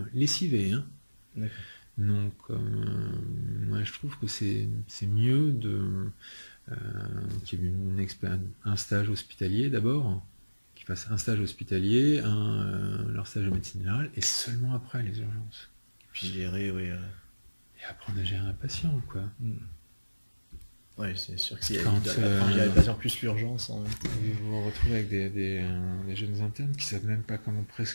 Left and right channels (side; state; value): both; inverted; correlation -1.00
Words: lessivés. Hein. Donc, moi, je trouve que c'est mieux qu'il y ait un stage hospitalier d'abord, qu'ils fassent un stage hospitalier, leur stage de médecine générale, et seulement après les urgences. Puis gérer, et apprendre à gérer un patient, quoi. Ouais, c'est sûr que s'il y a Quand, il y a de plus plus l'urgence. Hein. Vous vous retrouvez avec des jeunes internes qui savent même pas comment